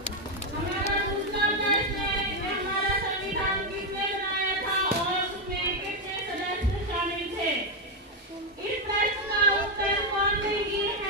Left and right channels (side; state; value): both; normal; correlation 0.05